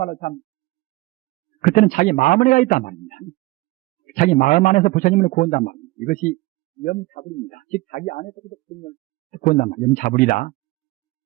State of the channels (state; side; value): quieter; left; 20.6 dB